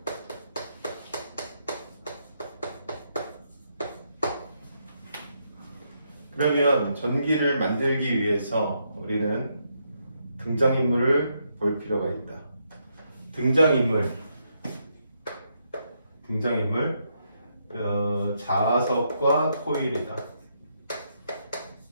그러면 전기를 만들기 위해서 우리는 등장인물을 볼 필요가 있다. 등장인물, 자석과 코일이다.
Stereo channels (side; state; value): both; inverted; correlation -0.79